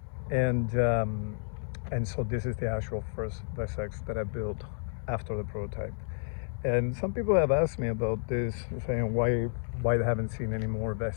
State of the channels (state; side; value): silent; right; digital silence